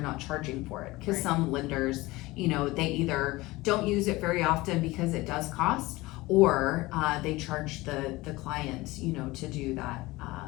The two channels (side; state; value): right; quieter; 20.4 dB